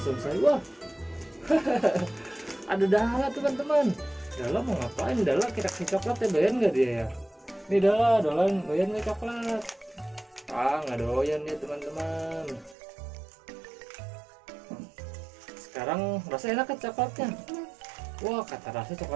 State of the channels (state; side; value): drops out; left; at 12.8 s